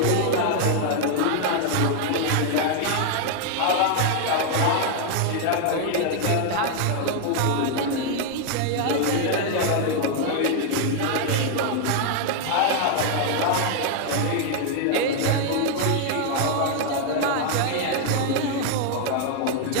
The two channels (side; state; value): both; different; correlation 0.00